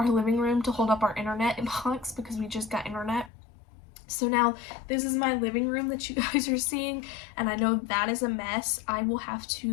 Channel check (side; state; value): right; drops out; at 3.3 s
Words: living room to hold up our internet box because we just got internet. So now this is my living room that you guys are seeing, and I know that is a mess. I will have